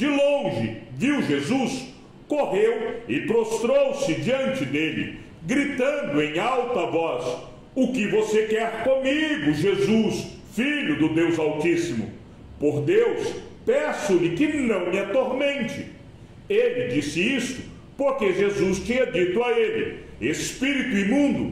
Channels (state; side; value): identical; both; correlation 1.00